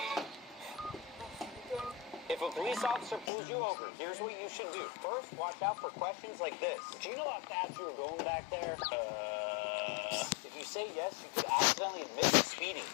If a police officer pulls you over, here's what you should do. First, watch out for questions like this. Do you know how fast you were going back there? If you say yes, you could accidentally admit to speeding.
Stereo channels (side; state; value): right; drops out; at 3.3 s